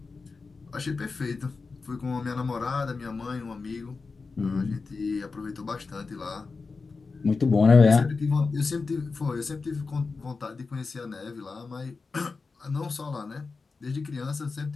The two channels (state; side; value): quieter; right; 4.3 dB